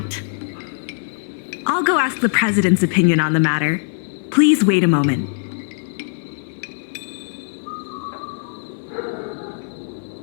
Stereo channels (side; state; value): right; silent; 58 dB below the other